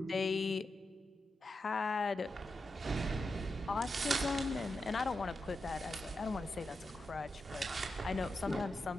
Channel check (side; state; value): both; normal; correlation 0.88